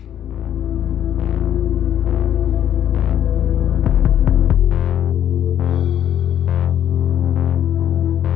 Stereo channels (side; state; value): right; quieter; 10.4 dB